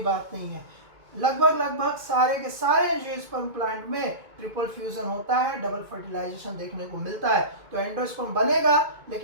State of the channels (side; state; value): left; late; 2.2 ms